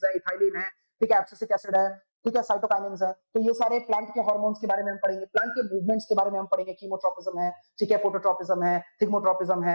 है, इथाइलिन है, ठीक है, एब्सिसिक एसिड है, ठीक है, साइटोकाइनिन्स है। तो ये सारे प्लांट के हार्मोन्स के बारे में हम पढ़ेंगे, प्लांट के मूवमेंट्स के बारे में हम पढ़ेंगे, कीमोट्रोपिज्म है, ठीक है, फोटोट्रोपिज्म है, थिग्मोट्रोपिज्म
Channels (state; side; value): inverted; both; correlation -1.00